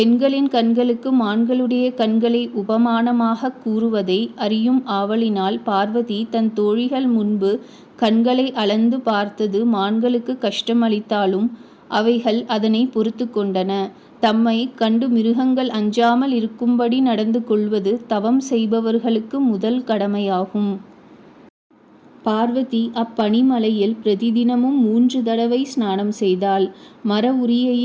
கண்களுக்கு மான்களுடைய கண்களை உபமானமாகக் கூறுவதை அறியும் ஆவலினால் பார்வதி தன் தோழிகள் முன்பு கண்களை அளந்து பார்த்தது மான்களுக்கு கஷ்டமளித்தாலும் அவைகள் அதனை பொறுத்து கொண்டன. தம்மை கண்டு மிருகங்கள் அஞ்சாமல் இருக்கும்படி நடந்து கொள்வது தவம் செய்பவர்களுக்கு முதல் கடமையாகும். பார்வதி அப்பனிமலையில் பிரதிதினமும் 3 தடவை ஸ்நானம் செய்தாள். மர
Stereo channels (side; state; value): both; identical; correlation 1.00